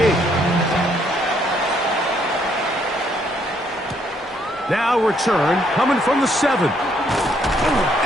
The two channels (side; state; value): both; normal; correlation 0.70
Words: Now return coming from the 7.